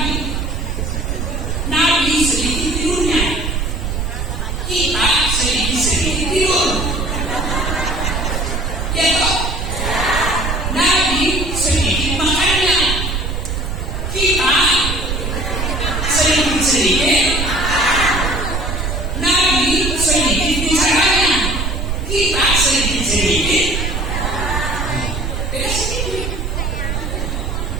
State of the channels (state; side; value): noise; right; rumble, 2 dB below the sound